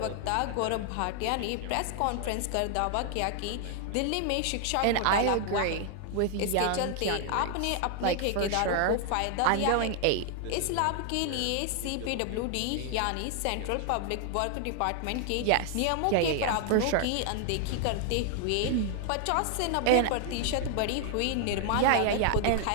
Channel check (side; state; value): both; different; correlation 0.00